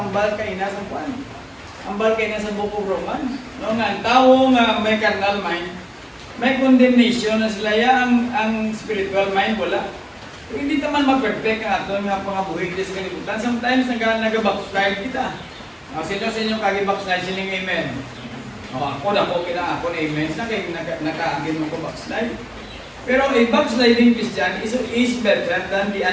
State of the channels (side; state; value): both; identical; correlation 1.00